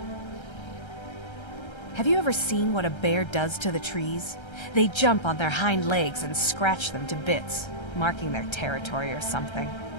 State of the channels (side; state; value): right; late; 1.3 ms